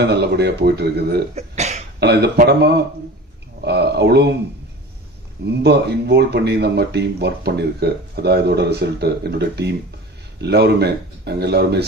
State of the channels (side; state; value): both; normal; correlation 0.37